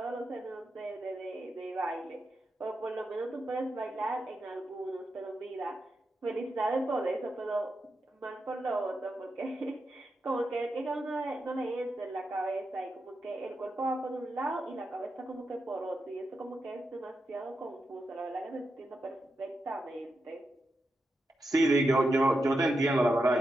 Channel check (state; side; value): normal; both; correlation 0.87